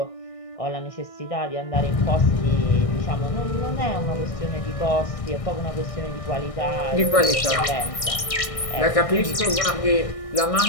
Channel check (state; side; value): late; right; 1.6 ms